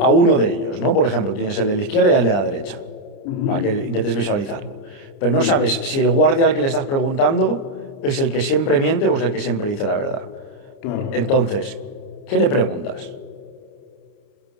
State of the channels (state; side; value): late; right; 29 ms